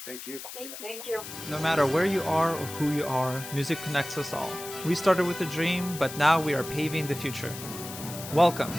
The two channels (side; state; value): left; noise; hiss, 11 dB below the sound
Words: Thank you. Thank you. No matter where you are or who you are, music connects us all. We started with a dream, but now we are paving the future. Welcome